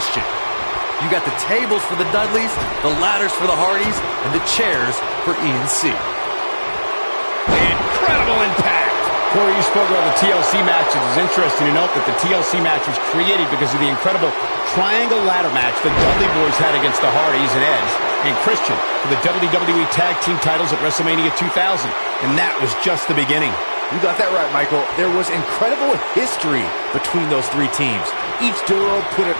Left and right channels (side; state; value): both; inverted; correlation -1.00